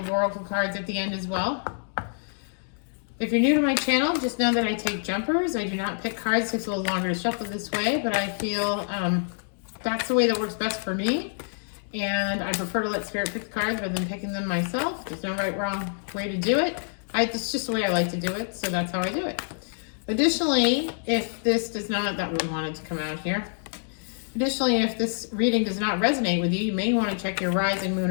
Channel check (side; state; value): right; silent; digital silence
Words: Oracle cards at the end as well. If you're new to my channel, just know that I take jumpers. I do not pick cards. It takes a little longer to shuffle this way, but I feel that's the way that works best for me. And I prefer to let Spirit pick the cards rather than picking them myself. There's no right, wrong way to do it. It's just the way I like to do it, so that's how I do it. Additionally, if this does not, that would want it to come out here. Additionally, if this reading does not resonate with you, you may want to check your rising, moon,